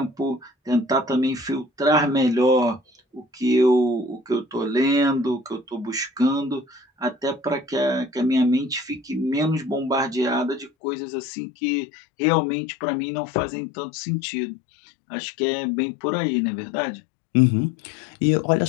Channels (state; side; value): drops out; right; at 10.7 s